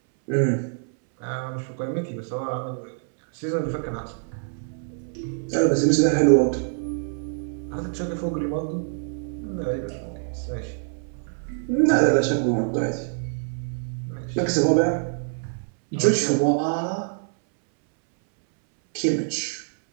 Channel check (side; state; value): left; silent; 62 dB below the other